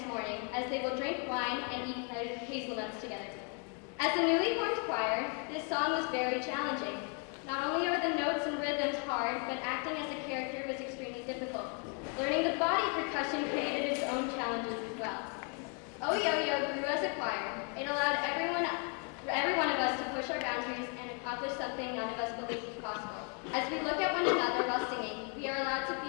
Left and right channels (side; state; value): right; quieter; 38.2 dB